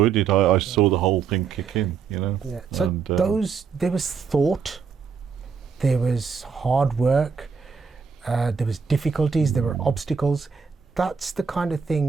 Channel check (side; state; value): left; quieter; 6.0 dB